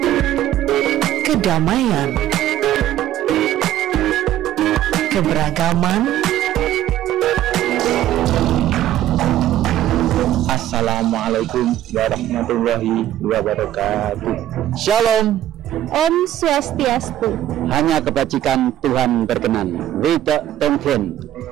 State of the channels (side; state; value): left; quieter; 12.7 dB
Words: kedamaian, keberagaman. Assalamualaikum warahmatullahi wabarakatuh. Shalom. Om Swastiastu. Hanya kebajikan Tuhan berkenan. Wida Tonghen.